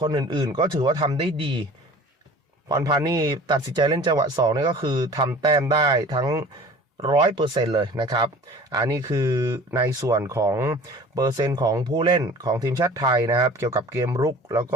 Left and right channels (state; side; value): normal; both; correlation 0.44